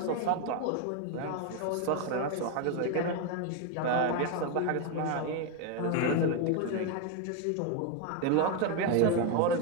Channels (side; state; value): both; different; correlation 0.02